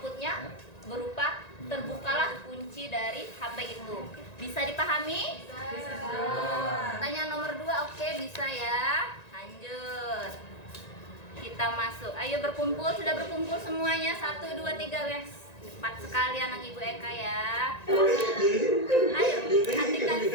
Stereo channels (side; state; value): right; late; 1.9 ms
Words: berupa terbukalah kunci dari HP itu. Bisa dipahami? Bisa. Pertanyaan nomor 2, oke, bisa ya. Lanjut. Kita masuk. Ayo berkumpul, sudah berkumpul semuanya. 1, 2, 3, guys. 4 sekali anak Ibu Eka ya. Ayo, perhatikan